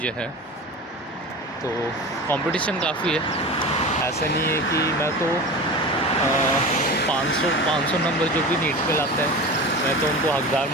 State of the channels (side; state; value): both; normal; correlation 0.32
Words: हैं, तो कंपटीशन काफ़ी है। ऐसा नहीं है कि मैं तो 500 नंबर जो भी नीट पे लाते हैं, मैं तो उनको हकदार